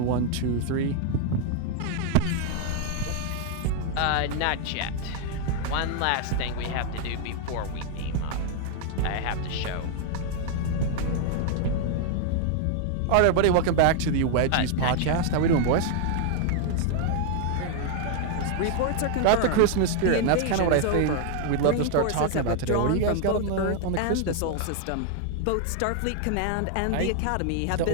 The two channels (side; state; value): both; different; correlation 0.00